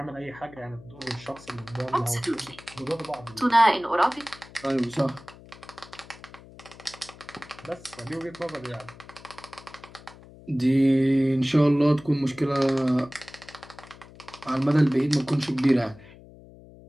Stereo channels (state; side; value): noise; left; hum, 20 dB below the sound